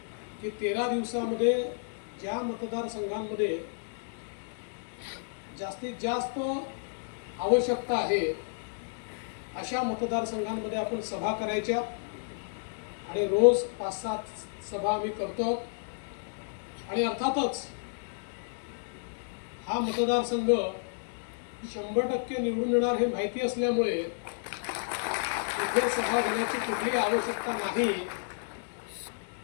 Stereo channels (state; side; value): silent; right; digital silence